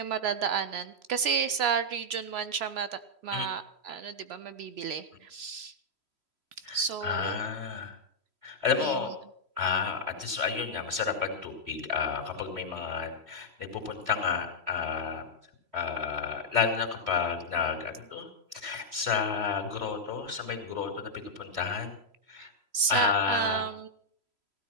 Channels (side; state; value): left; late; 3.1 ms